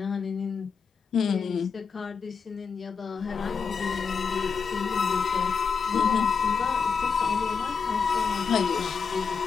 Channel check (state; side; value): quieter; right; 5.7 dB